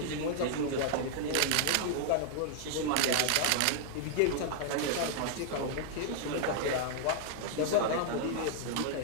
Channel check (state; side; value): different; both; correlation 0.00